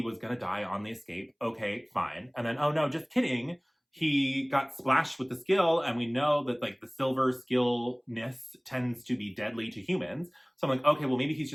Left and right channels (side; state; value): both; identical; correlation 1.00